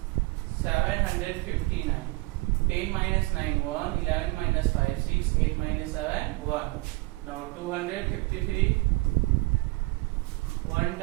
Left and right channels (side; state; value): left; quieter; 23.6 dB